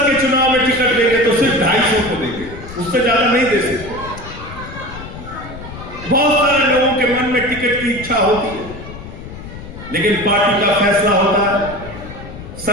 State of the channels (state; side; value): noise; left; rumble, 13 dB below the sound